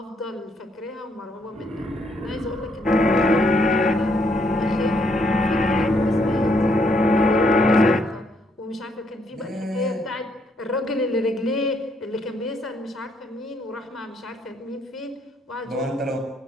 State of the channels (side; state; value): both; normal; correlation 0.72